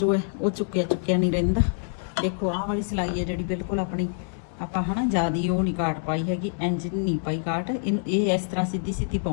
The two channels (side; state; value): right; silent; digital silence